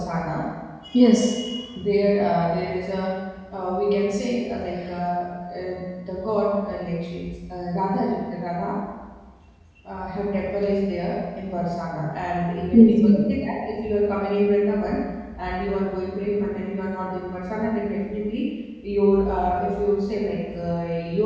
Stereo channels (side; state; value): both; identical; correlation 1.00